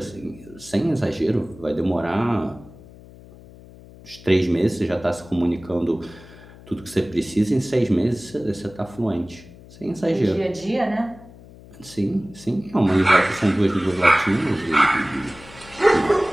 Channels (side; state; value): left; noise; hum, 20 dB below the sound